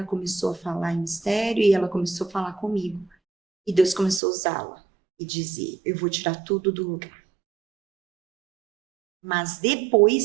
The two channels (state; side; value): drops out; left; at 4.2 s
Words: começou a falar em mistério, e ela começou a falar comigo. E Deus começou a usá-la, e dizer, eu vou tirar tudo do lugar. Mas